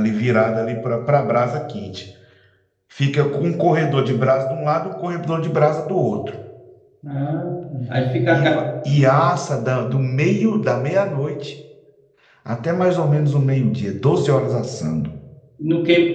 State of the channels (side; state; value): both; identical; correlation 1.00